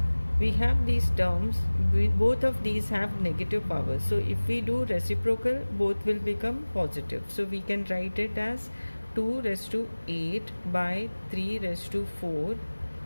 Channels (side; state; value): both; inverted; correlation -1.00